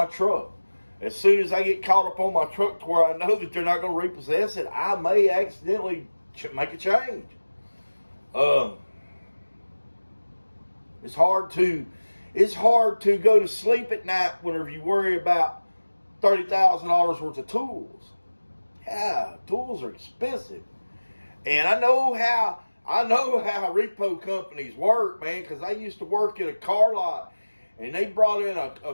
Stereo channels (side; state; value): both; inverted; correlation -1.00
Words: truck. As soon as I get caught up on my truck to where I know that they're not going to repossess it, I may accidentally make a change. It's hard to go to sleep at night whenever you worry about $30,000 worth of tools. Yeah, tools are expensive. And I know how repo companies work, man, because I used to work at a car lot, and they brought in